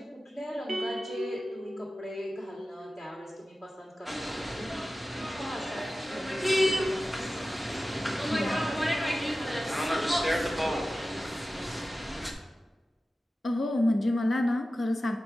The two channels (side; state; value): both; normal; correlation 0.95